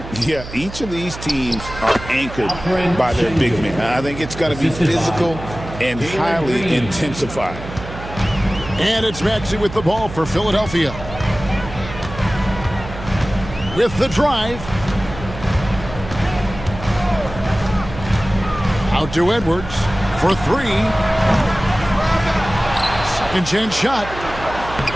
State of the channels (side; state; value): right; noise; hum, 12 dB below the sound